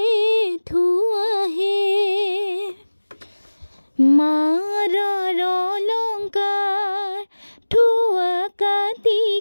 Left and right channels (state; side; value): inverted; both; correlation -1.00